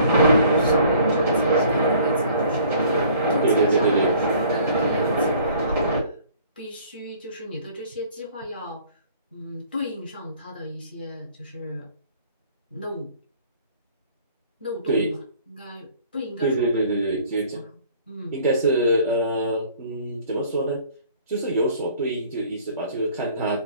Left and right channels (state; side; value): inverted; both; correlation -0.54